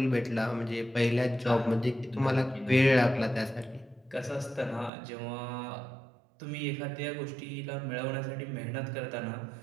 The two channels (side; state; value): left; drops out; at 4.9 s